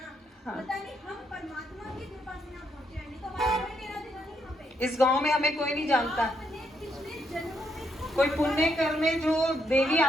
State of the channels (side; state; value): both; normal; correlation 0.76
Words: हाँ। पता नहीं हम परमात्मा की कृपा से यहाँ पहुंचे हैं, नहीं तो हमारा कोई लेना देना नहीं यहाँ पे। इस गांव में हमें कोई नहीं जानता। आपने पिछले जन्मों में कोई पुण्य कर्म में जो देवी